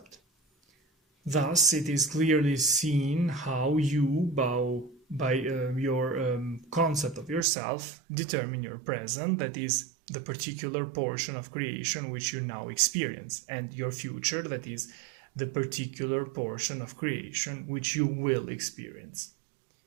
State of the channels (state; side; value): drops out; left; at 7.5 s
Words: Thus, it is clearly seen how you, by your concept of yourself, determine your present, that is, the particular portion of creation which you now experience, and your future, that is, the particular portion of creation which you will experience.